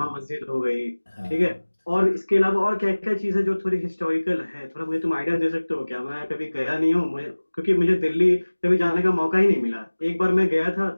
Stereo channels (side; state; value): both; inverted; correlation -1.00